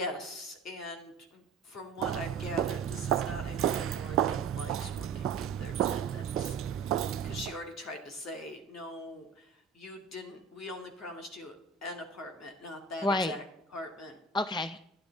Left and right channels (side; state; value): left; quieter; 4.8 dB